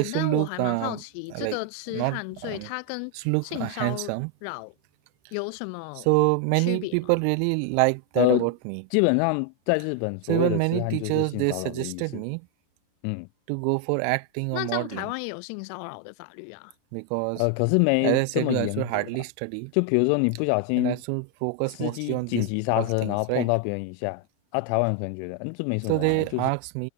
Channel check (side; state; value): both; different; correlation 0.00